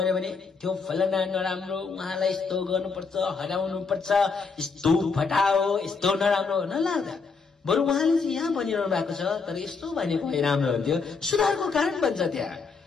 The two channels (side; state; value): right; quieter; 4.9 dB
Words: भने त्यो फलाना नराम्रो, उहाँलाई यस्तो गर्नुपर्छ, हराउनुपर्छ, यस्तो फटाओ, यस्तो नराम्रो नलाग्दा बरु उहाँले चाहिँ यहाँ भनिरहनु भएको छ तर यस्तो भनेको भए राम्रो हुन्थ्यो, सुधारको कारण बन्छ त्यहाँ।